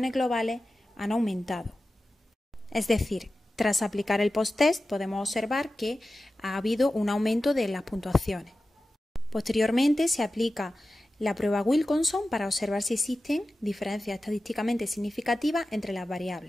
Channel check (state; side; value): normal; both; correlation 0.94